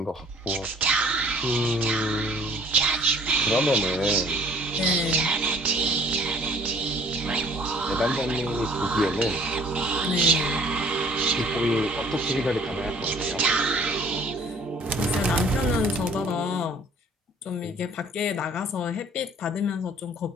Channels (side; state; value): both; normal; correlation 0.54